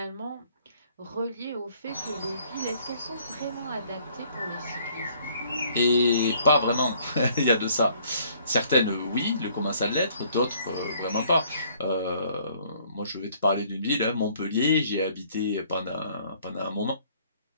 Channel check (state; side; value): inverted; both; correlation -0.61